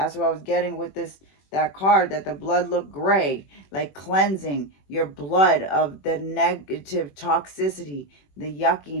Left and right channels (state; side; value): late; right; 21 ms